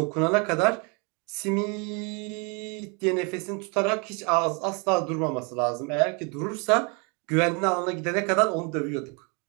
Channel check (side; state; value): left; quieter; 33.9 dB